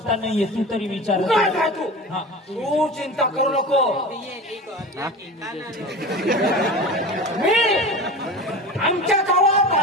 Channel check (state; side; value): normal; both; correlation 0.32